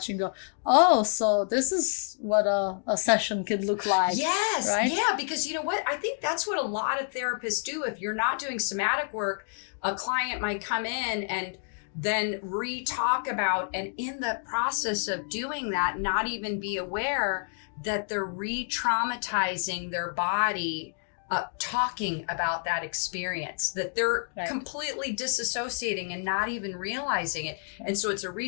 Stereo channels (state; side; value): silent; right; digital silence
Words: and go, oh, so this is what a session could look like. Yes. Right? Yeah. Because you know what? I think that's what a lot of therapists do. If you're not doing somatic work, a client might come in and then re-talk about, and in the process of doing that, not even be aware that they're re-traumatizing their body talking about that experience, that they're Right. completely disassociating and not even realizing it. And so it's a